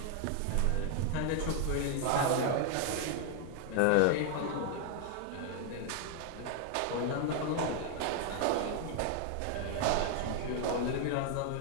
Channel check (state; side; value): different; both; correlation 0.00